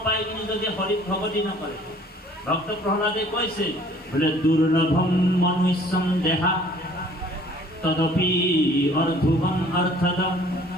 পাই কিনি যদি হৰিত ভগতি নকৰে, ভক্ত প্ৰহ্লাদে কৈছে বোলে দুৰ্লভম মনুষ্যম দেহা তদপি অৰ্ধুবম অৰ্থদম,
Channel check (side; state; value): both; normal; correlation 0.55